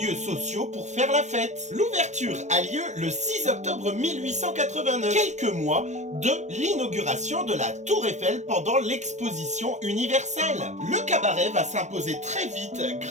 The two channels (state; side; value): late; left; 0.34 ms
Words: sociaux pour faire la fête. L'ouverture a lieu le 6 octobre 1889, quelques mois de l'inauguration de la Tour Eiffel pendant l'exposition universelle. Le cabaret va s'imposer très vite